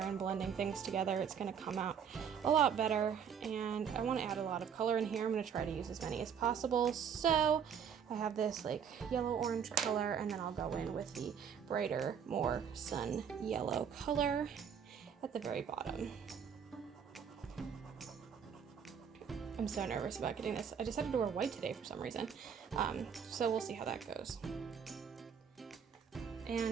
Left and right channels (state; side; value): quieter; left; 7.4 dB